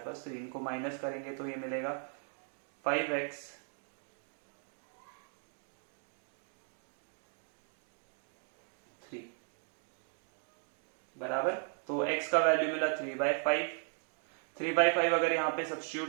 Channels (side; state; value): left; silent; 53 dB below the other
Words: पास 3, इनको माइनस करेंगे तो ये मिलेगा 5x बराबर, तो x का वैल्यू मिला 3/5, 3/5 अगर यहाँ पे